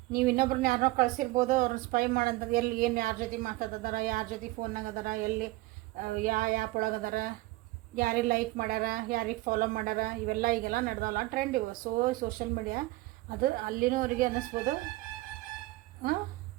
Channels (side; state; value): left; quieter; 19.6 dB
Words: ನೀವು ಇನ್ನೊಬ್ರನ್ನ ಯಾರನ್ನೋ ಕಳಿಸಿರ್ಬೋದು, ಅವ್ರನ್ನ ಸ್ಪೈ ಮಾಡೋಂಥದ್ದು. ಎಲ್ಲಿ ಏನು ಯಾರ ಜೊತೆ ಮಾತಾಡ್ತಿದಾರ, ಯಾರ ಜೊತೆ ಫೋನ್ನಾಗ ಅದಾರ, ಎಲ್ಲಿ ಯಾವ ಆ್ಯಪ್ ಒಳಗೆ ಅದಾರ, ಯಾರಿಗೆ ಲೈಕ್ ಮಾಡ್ಯಾರ, ಯಾರಿಗೆ ಫಾಲೋ ಮಾಡ್ಯಾರ, ಇವೆಲ್ಲ ಈಗೆಲ್ಲ ನಡೆದವಲ್ಲ ಟ್ರೆಂಡ್ ಇವು. ಸೋಷಿಯಲ್ ಮೀಡಿಯಾ ಅದು ಅಲ್ಲಿನೂ ಅವರಿಗೆ ಅನ್ನಿಸ್ಬೋದು.